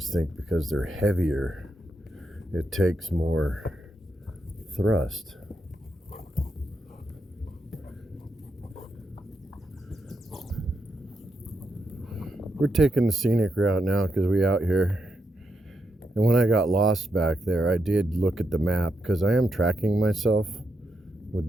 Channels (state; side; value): normal; both; correlation 0.83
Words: think because they're heavier, it takes more thrust. We're taking the scenic route now because we out here. And when I got lost back there, I did look at the map because I am tracking myself